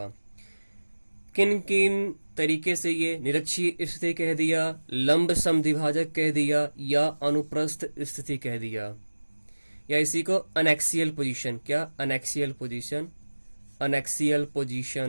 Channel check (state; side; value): inverted; both; correlation -1.00